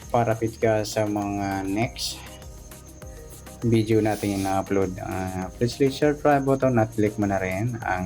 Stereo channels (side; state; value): both; identical; correlation 1.00